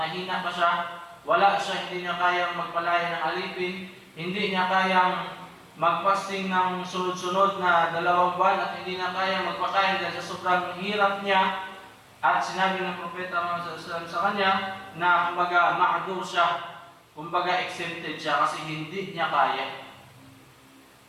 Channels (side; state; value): both; identical; correlation 1.00